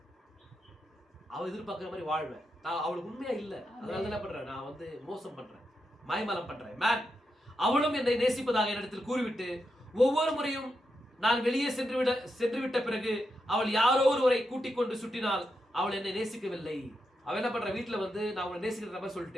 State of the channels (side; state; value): both; normal; correlation 0.85